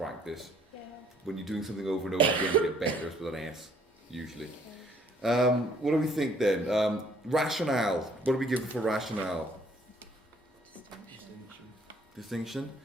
Yeah. When you're doing something over and over again, you get better. It's with an S usually. What do we think then? Rationale. What do we give for rationale? Distinction.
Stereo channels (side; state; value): both; normal; correlation 0.63